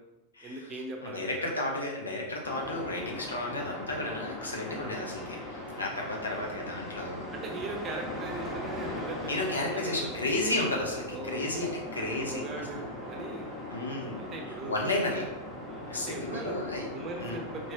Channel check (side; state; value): both; normal; correlation -0.16